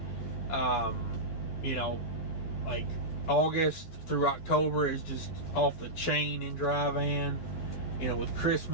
you know, like August through October is just off the chain in dry van, you know, with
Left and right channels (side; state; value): right; late; 11 ms